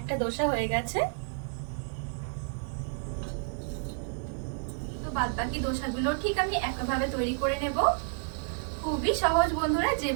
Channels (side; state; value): left; silent; 58 dB below the other